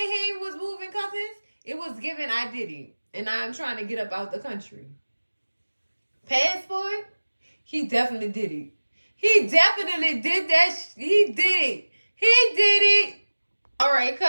was moving, cousins, it was giving I did it. And I'm trying to get up out the country. Passport? He definitely did it. He definitely did that. He did it. He did it. All right,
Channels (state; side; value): inverted; both; correlation -1.00